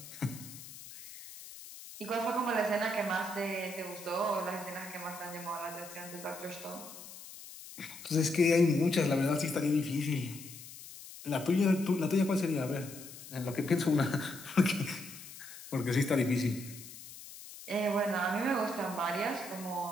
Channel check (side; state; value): left; noise; hiss, 15 dB below the sound